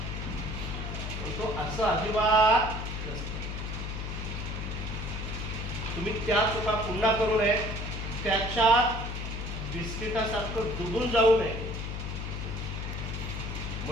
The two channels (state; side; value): noise; left; hum, 5 dB below the sound